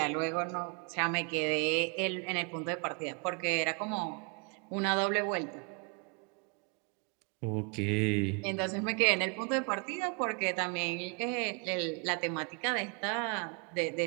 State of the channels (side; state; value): left; quieter; 36.6 dB